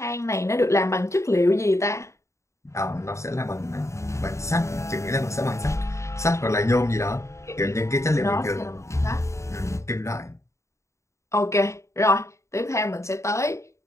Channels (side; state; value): right; late; 0.14 ms